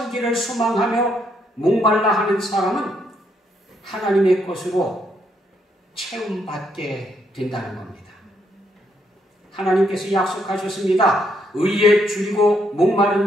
소망하며 목말라 하는 사람은 하나님의 것으로 채움받게 된다는 겁니다. 하나님께서 약속하셨습니다. 의에 줄이고 목마른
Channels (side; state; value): both; normal; correlation 0.74